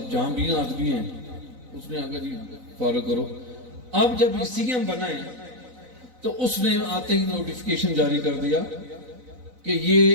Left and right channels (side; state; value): left; late; 4.0 ms